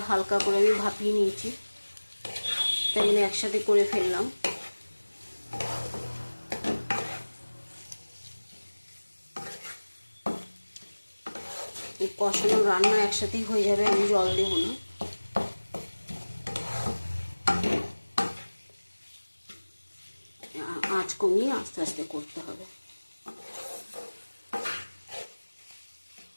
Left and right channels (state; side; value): inverted; both; correlation -1.00